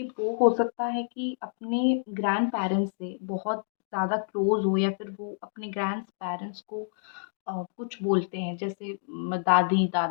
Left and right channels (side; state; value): right; silent; digital silence